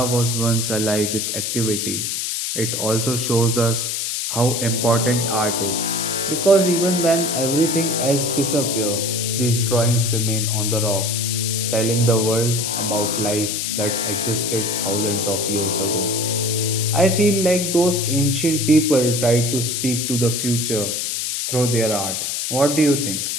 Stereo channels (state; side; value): noise; left; hiss, 2 dB below the sound